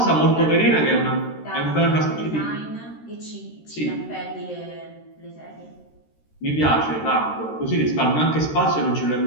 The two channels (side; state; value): right; late; 13 ms